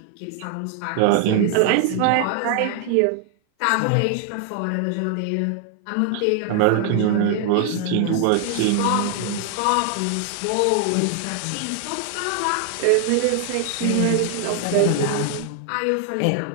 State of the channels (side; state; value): both; different; correlation 0.00